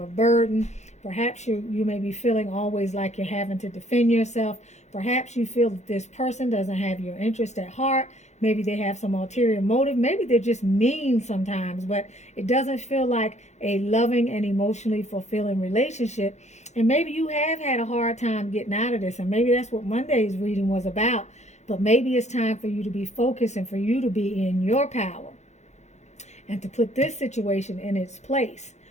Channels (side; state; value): right; late; 0.33 ms